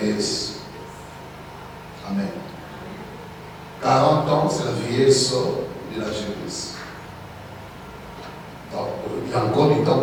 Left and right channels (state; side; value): identical; both; correlation 1.00